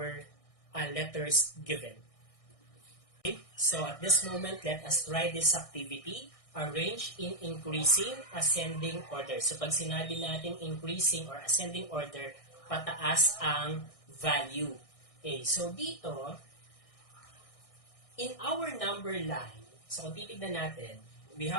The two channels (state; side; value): late; right; 1.6 ms